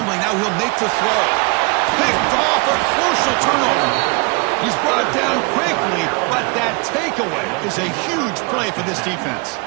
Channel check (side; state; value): left; quieter; 30.7 dB